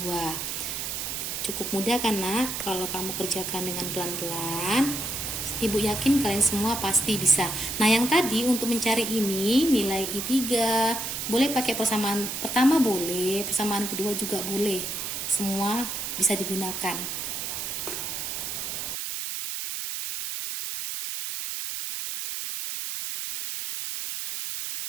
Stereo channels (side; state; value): right; noise; hiss, 4 dB below the sound